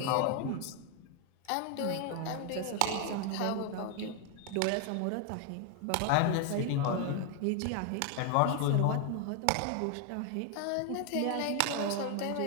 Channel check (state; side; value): different; both; correlation 0.01